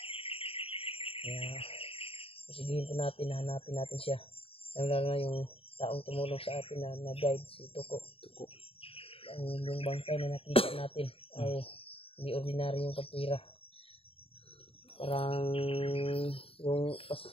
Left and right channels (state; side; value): late; right; 0.27 ms